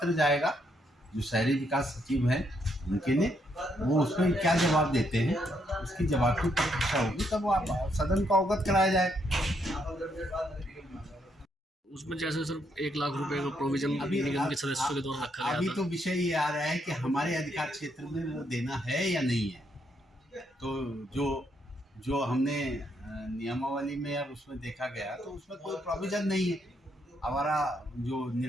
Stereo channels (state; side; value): normal; both; correlation 0.75